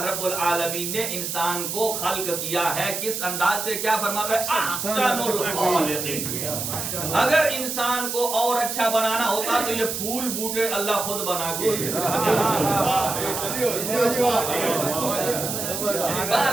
رب العالمین نے انسان کو خلق کیا ہے کس انداز سے؟ کیا فرماتا ہے؟ احسن الخالقین. اگر انسان کو اور اچھا بنانا ہوتا تو یہ پھول بوٹے اللہ خود بنا کے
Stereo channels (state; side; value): noise; right; hiss, 4 dB below the sound